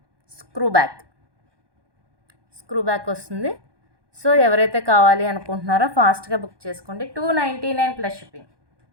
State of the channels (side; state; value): left; late; 1.2 ms